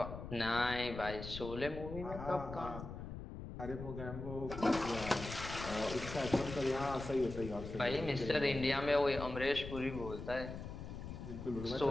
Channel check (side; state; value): left; noise; rumble, 9 dB below the sound